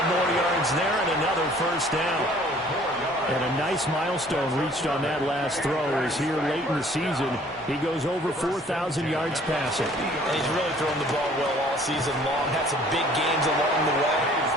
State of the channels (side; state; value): both; normal; correlation 0.55